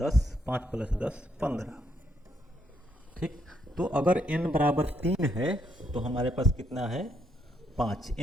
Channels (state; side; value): normal; both; correlation 0.74